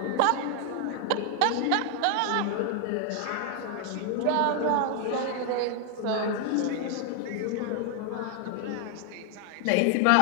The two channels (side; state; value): both; different; correlation 0.00